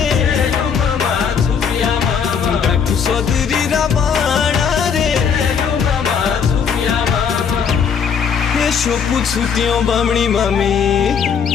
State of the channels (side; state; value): right; quieter; 6.8 dB